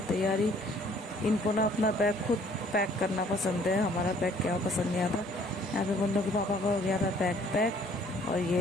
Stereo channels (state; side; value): normal; both; correlation 0.58